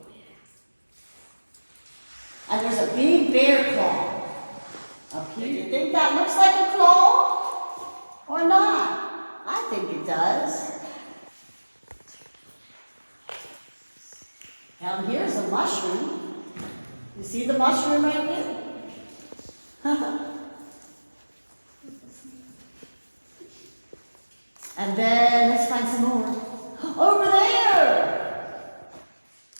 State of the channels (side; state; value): both; inverted; correlation -1.00